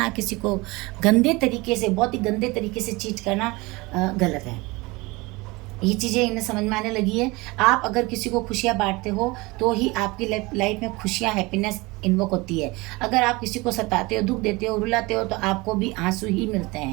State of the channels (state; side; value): quieter; left; 23.6 dB